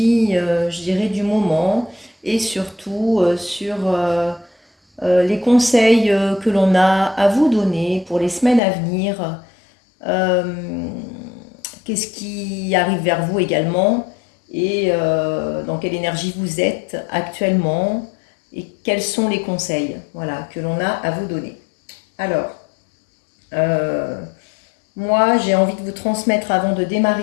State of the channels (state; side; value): drops out; right; at 8.6 s